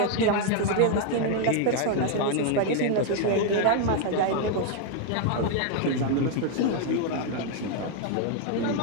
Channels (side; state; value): both; different; correlation 0.01